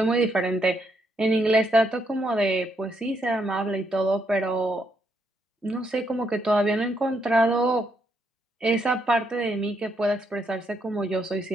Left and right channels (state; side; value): normal; both; correlation 0.76